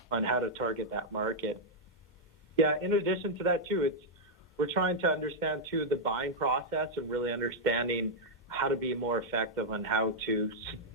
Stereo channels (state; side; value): normal; both; correlation -0.04